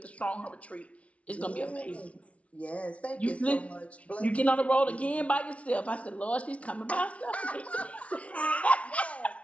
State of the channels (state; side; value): late; right; 0.064 ms